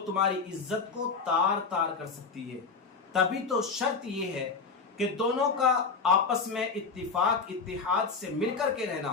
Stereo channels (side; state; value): right; quieter; 4.9 dB